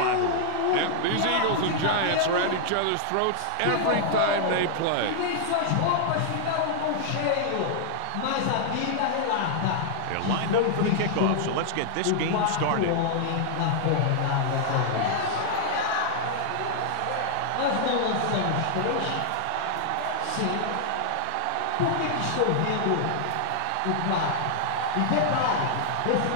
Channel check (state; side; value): different; both; correlation -0.01